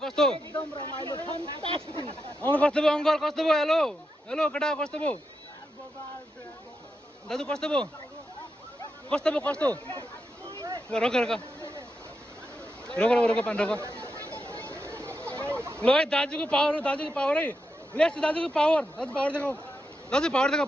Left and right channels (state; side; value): normal; both; correlation 0.86